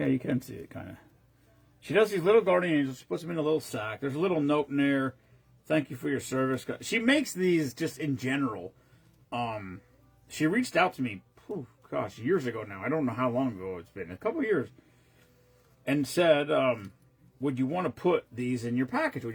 you can see it kind of. She does these little guardian angels. She puts them in a little sack. There's a little note in there. Thank you for your service. She makes these just in general. She reached out to me, years ago now. I don't know how long ago it's been. A couple of years. And said, would you want to put these in your package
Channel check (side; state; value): both; identical; correlation 1.00